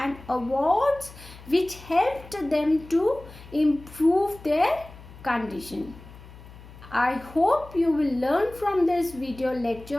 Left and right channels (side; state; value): left; noise; hum, 19 dB below the sound